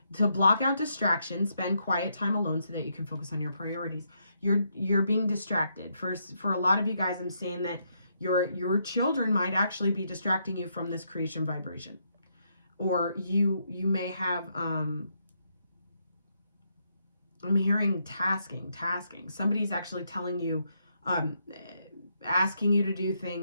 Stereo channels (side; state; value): both; inverted; correlation -0.78